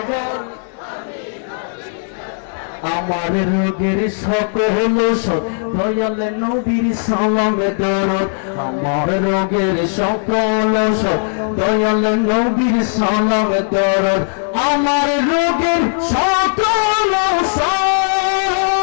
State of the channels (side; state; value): right; silent; digital silence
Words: আমার রোগের সকল ওষুধ দয়াল নবীর সালামে দরদ। আমার রোগের সকল ওষুধ দয়াল নবীর সালামে দরদ। আমার রোগের সকল